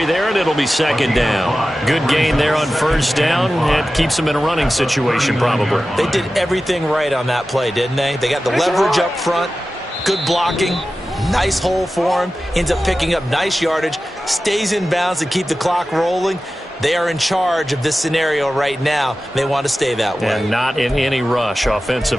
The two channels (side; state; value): both; normal; correlation 0.94